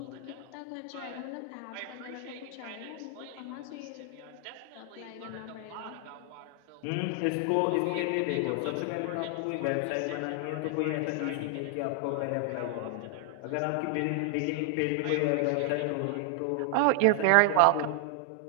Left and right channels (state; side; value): different; both; correlation 0.00